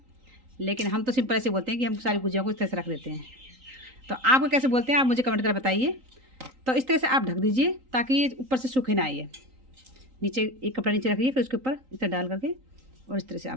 लेकिन हम तो सिंपल ऐसे बोलते हैं कि हम सारी गुजिया को इस तरह से रख देते हैं। तो आपको कैसे बोलते हैं आप मुझे कमेंट कर बताइए। तो इस तरह से आप ढक दीजिए ताकि ये ऊपर से सूखे ना आइए। नीचे एक कपड़ा नीचे रखिए, फिर उसके ऊपर इस तरह डाल करके और इस तरह से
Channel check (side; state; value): left; late; 3.8 ms